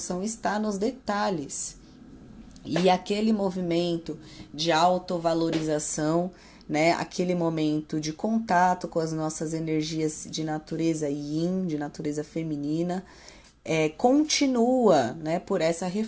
está nos detalhes. E aquele movimento de autovalorização, né? Aquele momento de contato com as nossas energias de natureza yin, de natureza feminina, continua, né? Por essa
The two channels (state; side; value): identical; both; correlation 1.00